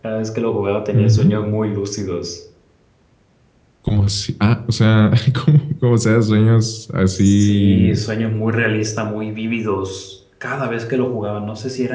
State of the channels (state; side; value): identical; both; correlation 1.00